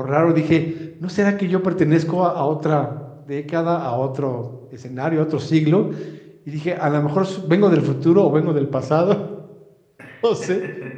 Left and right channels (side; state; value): both; identical; correlation 1.00